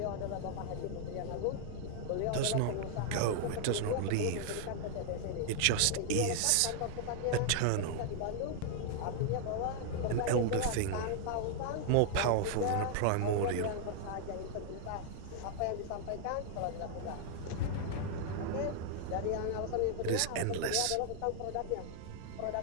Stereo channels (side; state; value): both; different; correlation -0.01